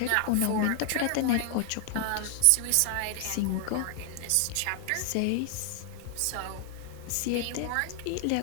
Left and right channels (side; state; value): both; different; correlation 0.00